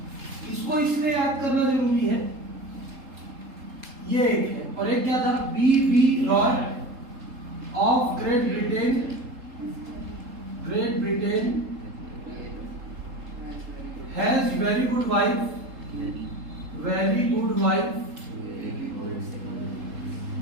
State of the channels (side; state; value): left; late; 3.7 ms